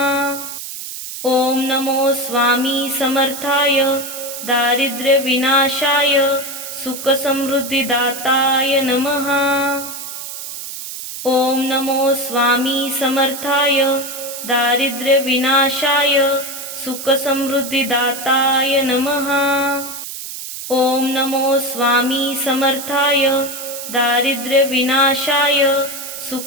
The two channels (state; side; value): noise; right; hiss, 9 dB below the sound